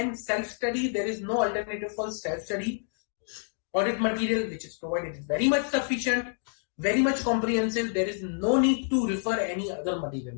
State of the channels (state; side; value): silent; right; 59 dB below the other